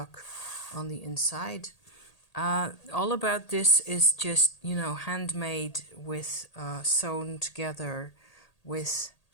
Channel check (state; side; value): late; right; 1.8 ms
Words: on the inside. All about this is just, handmade with sewn together with